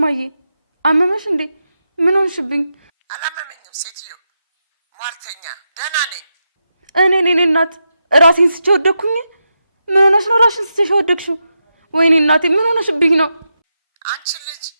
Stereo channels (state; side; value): inverted; both; correlation -0.87